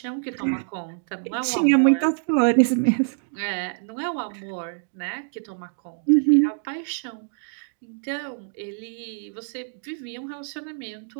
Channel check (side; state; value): left; silent; digital silence